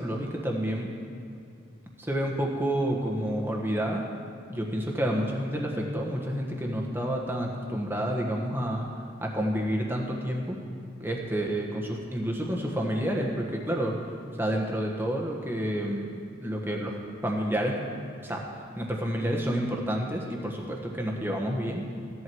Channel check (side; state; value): both; normal; correlation 0.78